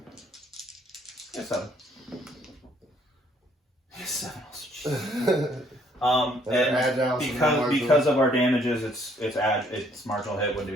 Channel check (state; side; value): normal; both; correlation 0.64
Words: Yeah, 7. Yeah, 7 also. And because of our damages, it's marginal hit. Wouldn't do